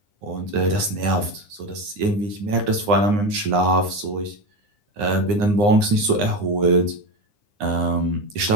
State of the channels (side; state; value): left; late; 9.7 ms